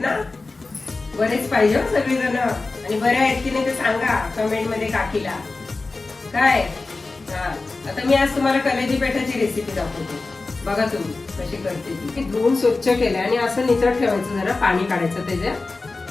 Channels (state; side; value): quieter; right; 3.6 dB